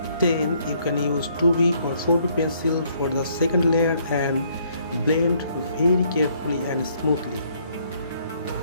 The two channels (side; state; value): both; inverted; correlation -0.66